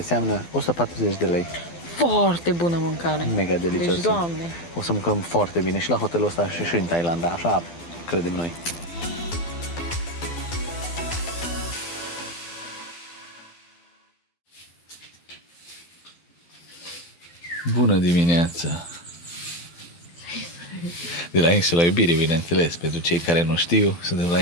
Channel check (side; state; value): right; late; 12 ms